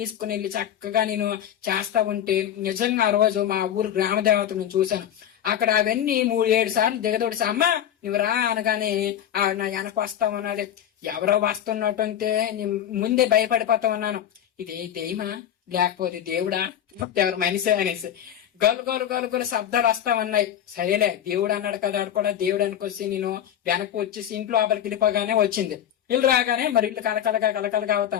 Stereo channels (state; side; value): quieter; right; 10.3 dB